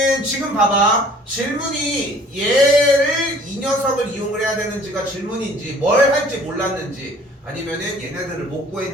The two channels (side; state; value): both; normal; correlation 0.53